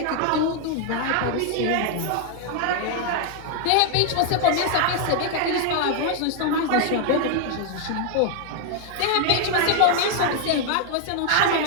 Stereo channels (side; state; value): both; different; correlation 0.00